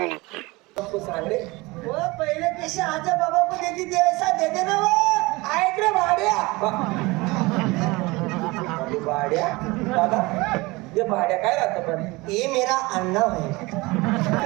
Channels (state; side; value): quieter; left; 23.0 dB